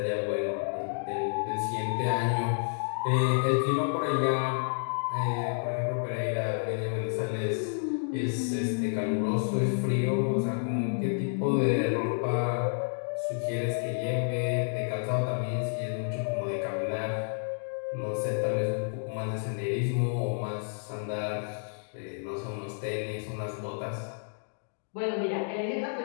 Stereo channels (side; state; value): right; silent; digital silence